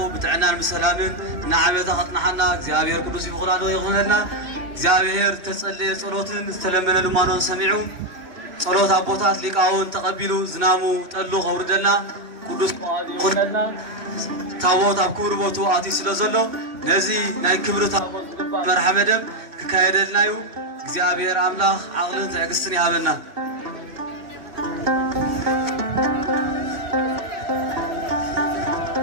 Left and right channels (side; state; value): left; late; 3.0 ms